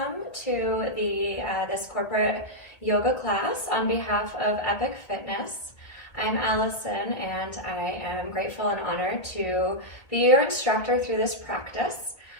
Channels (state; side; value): late; right; 1.8 ms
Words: to this corporate yoga class on behalf of Epic Fitness. I'm Alison, and I am grateful and honored to be your instructor through this practice.